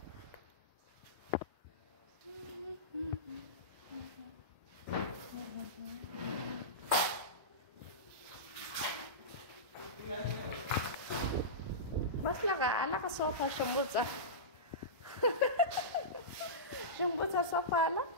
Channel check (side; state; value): both; normal; correlation -0.18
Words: बसला का? आला का सोफा शंभूचा? शंभूचा सोफा आला.